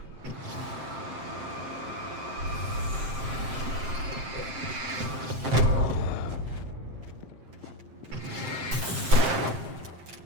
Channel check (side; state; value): left; late; 7.6 ms